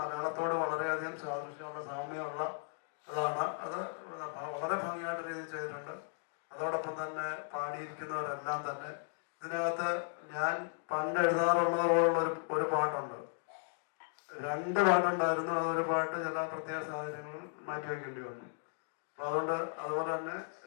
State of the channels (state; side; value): silent; right; digital silence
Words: വളരെയധികം സാദൃശ്യമുള്ള സാമ്യമുള്ള അതാണ്. അത് വളരെ ഭംഗിയായിട്ട് രീതിയിൽ ചെയ്തിട്ടുണ്ട്. അതോടൊപ്പം തന്നെ പാടിയിരിക്കുന്നവരെല്ലാം തന്നെ ഇതിനകത്ത് ഞാൻ പണ്ട് എഴുതാറുള്ളത് പോലുള്ള ഒരു പാട്ടുണ്ട്. 2 പാട്ടുണ്ടായിരുന്നു. അതൊരു പാട്ട് ചില പ്രത്യേക സാഹചര്യങ്ങളിൽ മാറ്റിവെക്കേണ്ടി വന്നു. അപ്പൊ അതുകൊണ്ട് അതുപോലെ തന്നെ